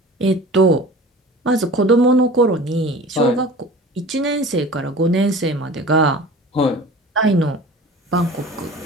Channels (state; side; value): normal; both; correlation 0.40